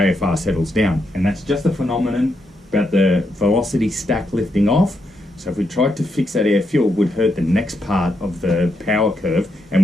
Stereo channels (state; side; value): normal; both; correlation 0.81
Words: settles down. And that's just a phenomenon about the velocity stack lifting off. So if we tried to fix that air fuel, we'd hurt the next part of the power curve and